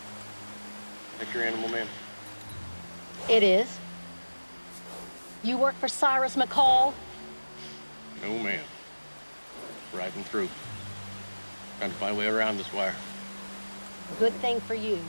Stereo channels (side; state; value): both; inverted; correlation -1.00